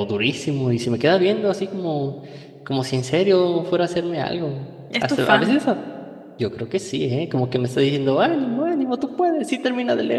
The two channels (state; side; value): identical; both; correlation 1.00